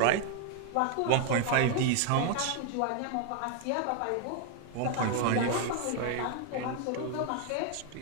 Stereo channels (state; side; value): different; both; correlation 0.00